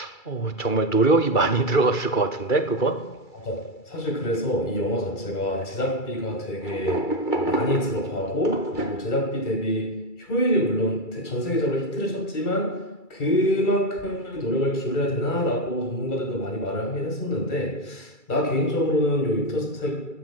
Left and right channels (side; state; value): right; late; 2.3 ms